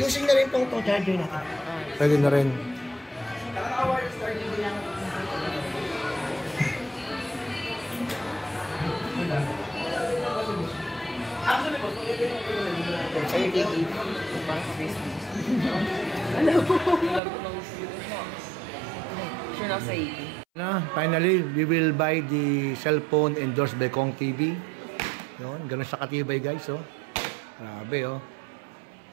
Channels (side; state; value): left; drops out; at 17.2 s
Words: na rin pong itong charger natin. Pwede na rin. Finally, we will buy the cellphone endorsed by Kong TV. Yun, ganun siya katibay, guys, oh. Grabe, oh.